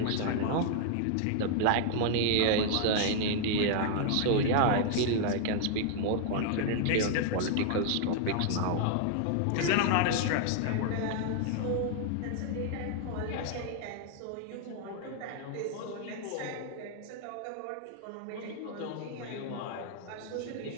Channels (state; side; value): different; both; correlation 0.00